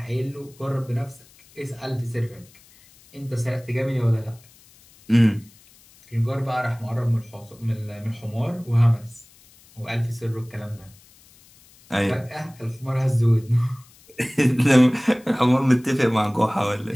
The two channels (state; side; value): noise; left; hiss, 27 dB below the sound